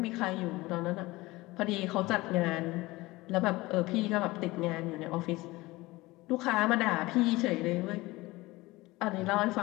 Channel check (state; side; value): quieter; right; 20.5 dB